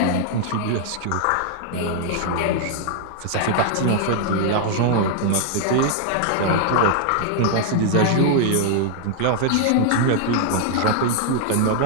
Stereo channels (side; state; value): both; different; correlation 0.00